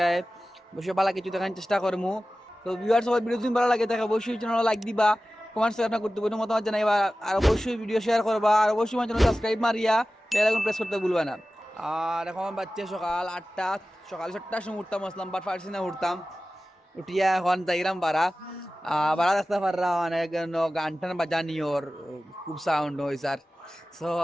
অবশ্যই ভালো কিছু দেখার চেষ্টা করবো। তো ভিউয়ার্স সকল, ভিডিও যদি ভালো লাগে থাকে অবশ্যই চ্যানেল লাইক দিবা, কমেন্টস আপনার গুরুত্বপূর্ণ মতামত জানাইবা, আর অবশ্যই ভিডিও শেয়ার করবা, আর অবশ্যই আমার চ্যানেল সাবস্ক্রাইব মারিয়া বেল আইকন প্রেস করতে ভুলবা না। আর এখন বাচ্চা সকাল 8টা, সকাল 7টার সময় উঠতাম, আসলাম বাট ফার্সি না উঠতাম, উঠিয়া এখন যাইরাম বাড়া বাড়া দেখতে পাররা অনেক গান টান বাজানি ওর খুব সাউন্ড হয়েছে। আর সো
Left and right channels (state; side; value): normal; both; correlation 0.95